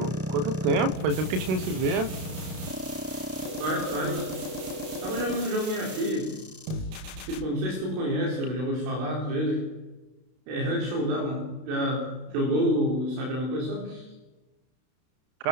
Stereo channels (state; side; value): late; left; 32 ms